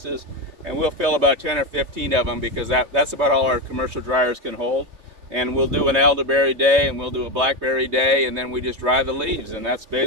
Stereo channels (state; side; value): late; left; 3.2 ms